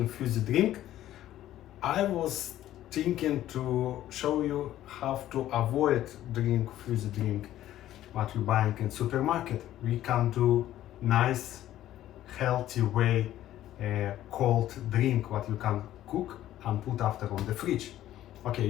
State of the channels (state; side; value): quieter; right; 13.2 dB